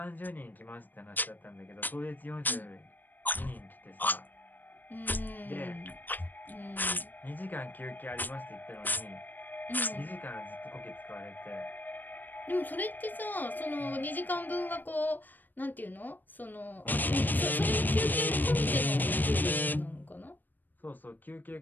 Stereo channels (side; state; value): right; late; 0.089 ms